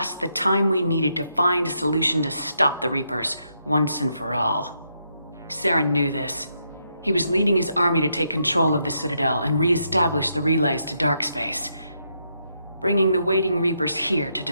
the time we needed to find a solution to stop the Reapers once and for all. Saren knew this. He was leading his army to take control of the Citadel and re-establish the relays to dark space, bringing the waiting Reapers here to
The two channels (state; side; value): inverted; both; correlation -0.79